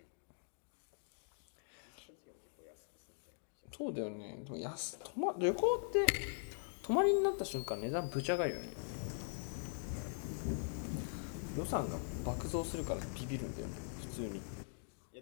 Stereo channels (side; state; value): right; silent; digital silence